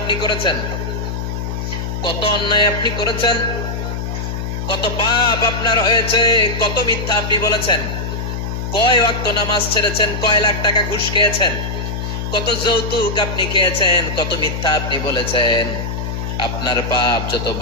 করেছেন, কত অন্যায় আপনি করেছেন, কত পাপ আপনার হয়েছে, কত মিথ্যা আপনি বলেছেন, কয় ওয়াক্ত নামাজ ছেড়েছেন, কয় লাখ টাকা ঘুষ খেয়েছেন, কত যৌতুক আপনি খেয়েছেন, কত মিথ্যা আপনি বলেছেন। আপনার পাপ যত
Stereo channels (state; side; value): noise; left; hum, 4 dB below the sound